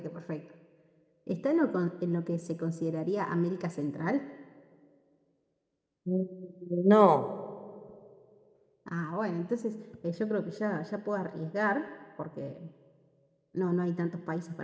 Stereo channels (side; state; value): both; identical; correlation 1.00